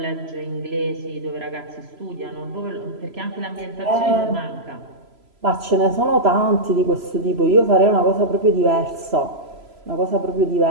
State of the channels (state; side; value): late; left; 3.0 ms